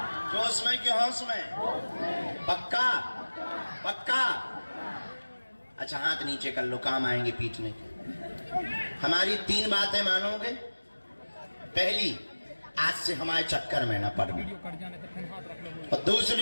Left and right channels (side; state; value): both; inverted; correlation -1.00